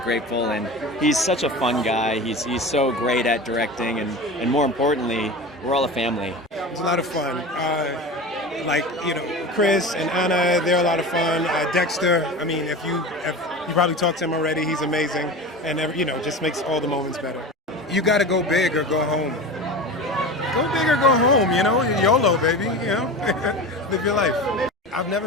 And he's such a fun guy. He's so great at directing, and more importantly, we're all a family. It's a lot of fun. Chris and Anna, they're a lot of fun. Dexter, I mean, if you probably talked to him already, he's amazing, and just makes all the moments better. You got to go big or go home. Go big or go home, YOLO, baby, live your life. I've never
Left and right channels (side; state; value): both; normal; correlation 0.31